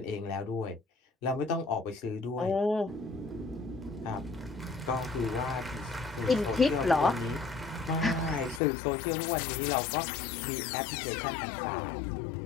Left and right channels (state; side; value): drops out; right; at 8.6 s